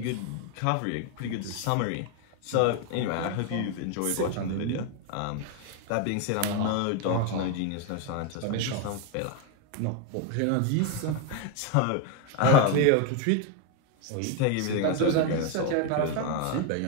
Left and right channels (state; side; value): different; both; correlation 0.01